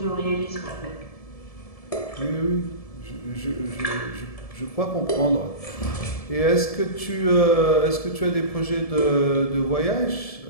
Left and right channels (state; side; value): late; right; 1.7 ms